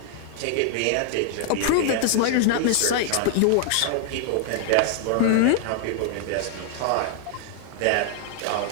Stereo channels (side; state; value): both; different; correlation -0.01